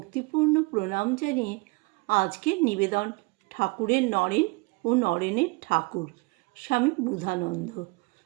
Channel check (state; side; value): quieter; left; 27.0 dB